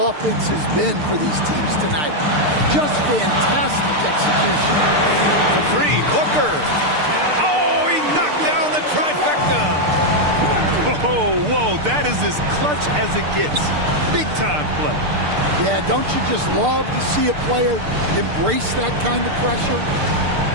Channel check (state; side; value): late; left; 6.7 ms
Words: been for these teams tonight? Just fantastic execution. For 3, Booker. Oh, he knocked down the trifecta. Whoa, that is as clutch as it gets. Big time play. Yeah, don't you just love to see a player embrace that kind of pressure?